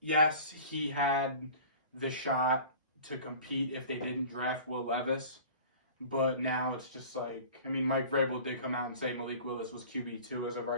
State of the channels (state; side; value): inverted; both; correlation -0.43